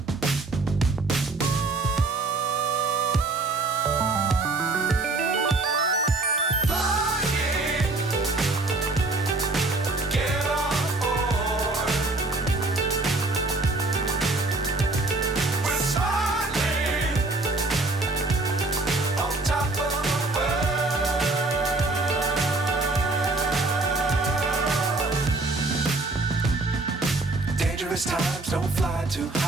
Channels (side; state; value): left; quieter; 3.3 dB